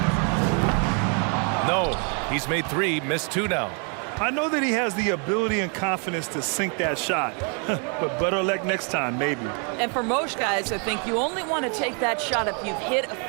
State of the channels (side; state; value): left; quieter; 38.7 dB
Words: No, he's made 3, missed 2 now. I know that he has the ability and confidence to sink that shot, but better luck next time, maybe. And for most guys, I think you only want to take that shot if you've hit a